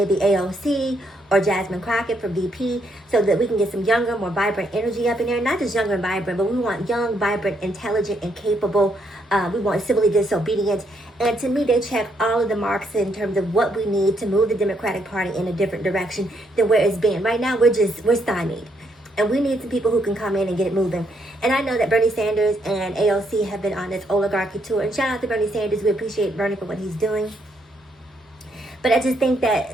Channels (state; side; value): normal; both; correlation 0.74